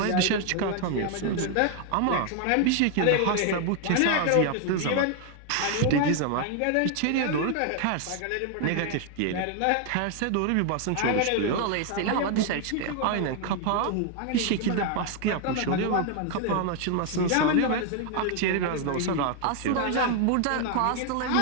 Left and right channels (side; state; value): both; different; correlation 0.01